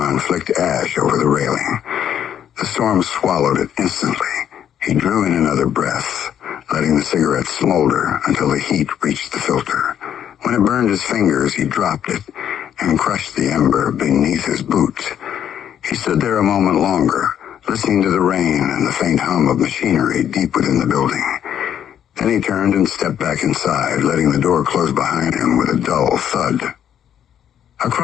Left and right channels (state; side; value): quieter; right; 9.6 dB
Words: flicked ash over the railing. The storm swallowed it instantly. He drew in another breath, letting the cigarette smolder until the heat reached the filter. When it burned his fingers, he dropped it and crushed the ember beneath his boot. He stood there a moment longer, listening to the rain and the faint hum of machinery deep within the building. Then he turned and stepped back inside, letting the door close behind him with a dull thud.